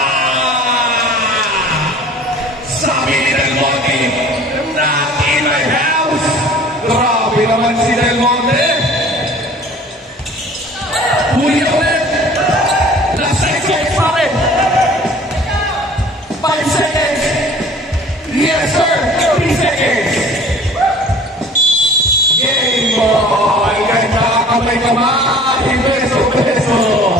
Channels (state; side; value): normal; both; correlation 0.47